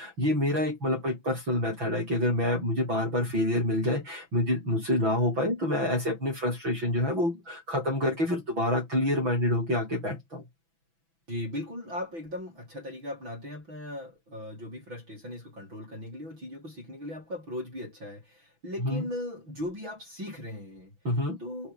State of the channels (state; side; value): late; left; 6.0 ms